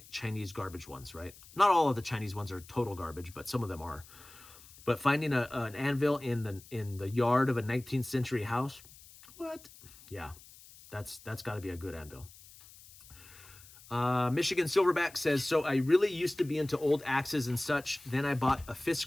Chinese garbage ones, right? Not all of the Chinese ones are total garbage, but some of them are. But finding an anvil in the yard of a 19th century house, what? Yeah, that's got to be a good anvil. Michigan Silverback says, so I really used to be into old axes and such. Then I bought a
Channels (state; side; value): noise; left; hiss, 21 dB below the sound